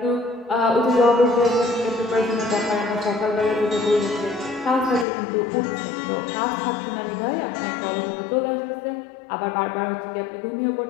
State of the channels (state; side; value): drops out; right; at 5.1 s